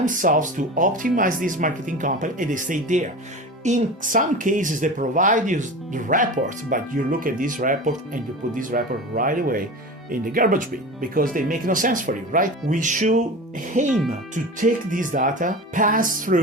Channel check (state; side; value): normal; both; correlation 0.31